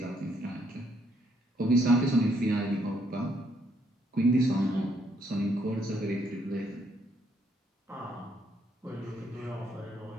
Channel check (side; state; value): both; normal; correlation 0.71